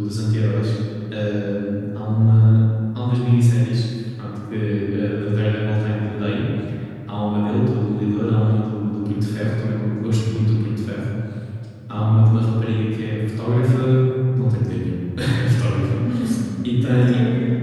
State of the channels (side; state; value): both; identical; correlation 1.00